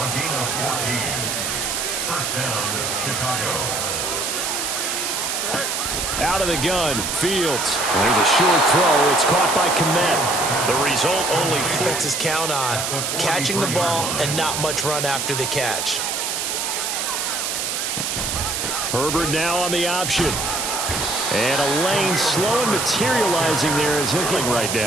Out of the gun, Fields. And there's a short throw. It's caught by Kmet. The result only defenses count on catching the ball and not much run after the catch. Herbert now on the option. And a lane slow and materializing there is hitting right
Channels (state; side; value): noise; right; hiss, 2 dB below the sound